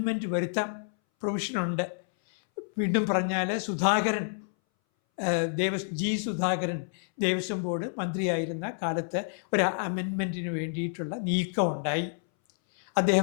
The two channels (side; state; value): right; silent; 59 dB below the other